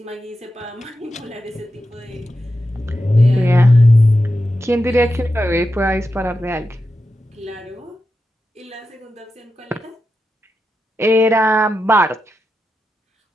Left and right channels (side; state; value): both; normal; correlation 0.89